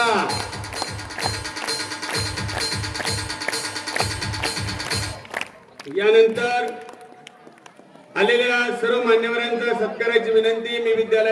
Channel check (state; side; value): identical; both; correlation 1.00